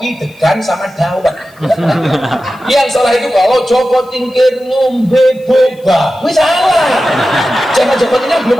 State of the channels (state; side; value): noise; left; hiss, 30 dB below the sound